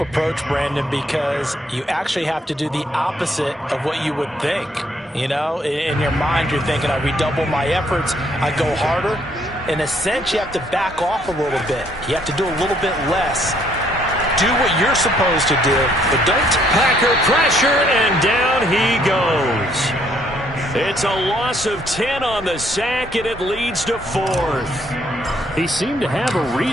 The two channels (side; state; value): both; normal; correlation 0.67